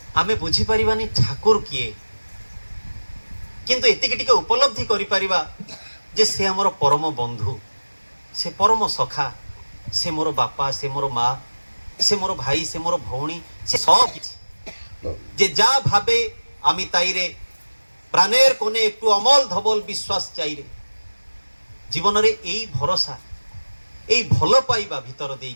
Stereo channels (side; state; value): both; inverted; correlation -1.00